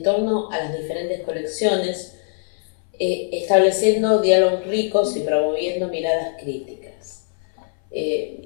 torno a las diferentes colecciones, estableciendo diálogos ricos y promoviendo miradas críticas.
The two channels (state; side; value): silent; right; 59 dB below the other